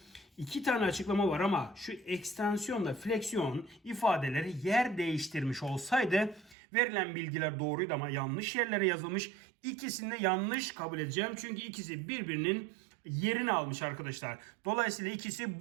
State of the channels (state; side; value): drops out; left; at 6.6 s